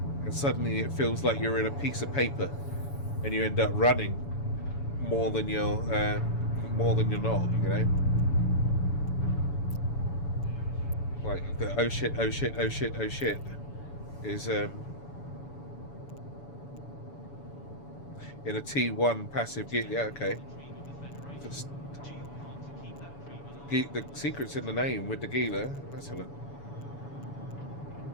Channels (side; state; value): right; late; 7.0 ms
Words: and suddenly it feels like you're in a piece of paper, and you end up running more than you're not, you know. Like the oh shit is in a T1 passive gear. Yeah, okay. The secret's in the name with the Gila. Let's have a look.